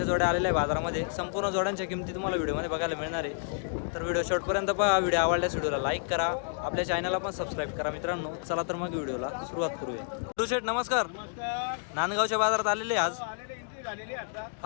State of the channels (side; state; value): right; silent; digital silence